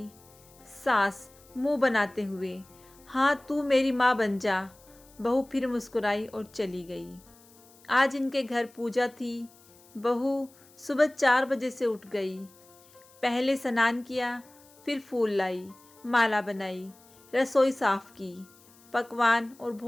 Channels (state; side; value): noise; left; hiss, 27 dB below the sound